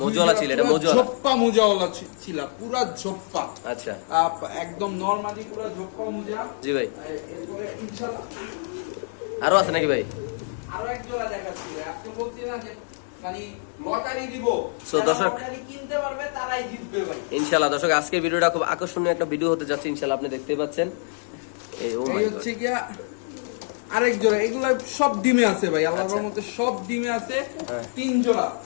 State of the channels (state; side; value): silent; right; 62 dB below the other